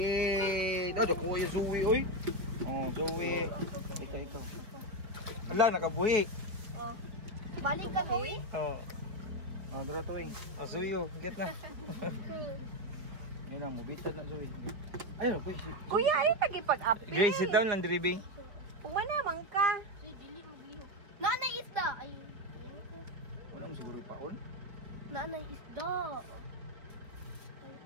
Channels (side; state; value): left; late; 4.3 ms